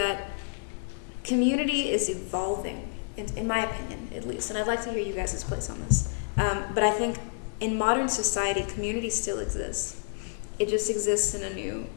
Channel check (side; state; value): right; silent; digital silence